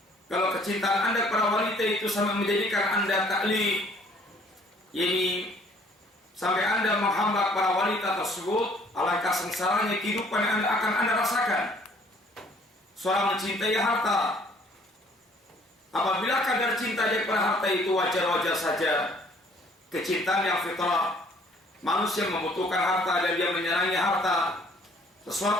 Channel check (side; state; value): both; normal; correlation 0.59